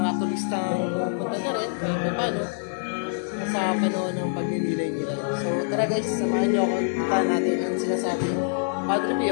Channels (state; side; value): silent; right; digital silence